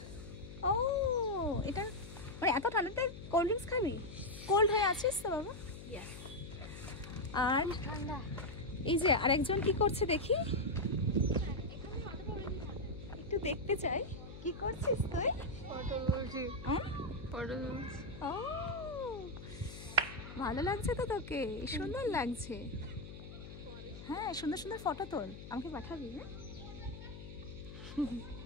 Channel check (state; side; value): noise; left; hum, 12 dB below the sound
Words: ও এটা মানে এত ঠান্ডাতে কোল্ড ড্রিঙ্কস খাবি? কোল্ড হয়ে আছিস তো বাবা? আর এই যে আরেকজন কি করছে দেখি, একটু দেখতে চাই। কি করছিস তুই? ও ভালো লাগছে তো তোকে? সুন্দর লাগছে। হ্যাঁ সুন্দর সুন্দর ফটো তোল, আমাকে পাঠাবি। হ্যাঁ